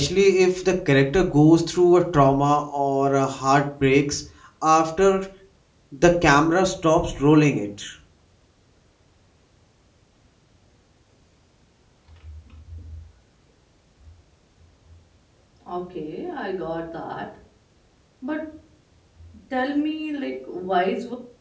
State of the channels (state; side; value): identical; both; correlation 1.00